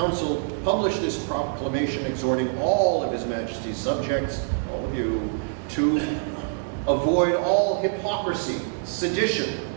publish this proclamation exhorting all of His Majesty's subjects, all of you, to avoid all hypocrisy, sedition,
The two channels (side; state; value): left; silent; digital silence